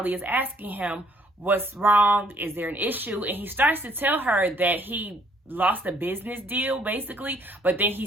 is asking him, what's wrong? Is there an issue? And he starts to tell her that he lost a business deal, basically, but then he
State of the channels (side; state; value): both; normal; correlation 0.63